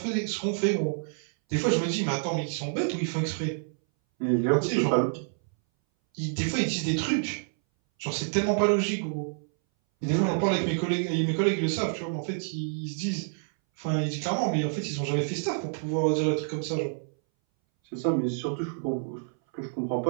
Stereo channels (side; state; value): left; silent; 59 dB below the other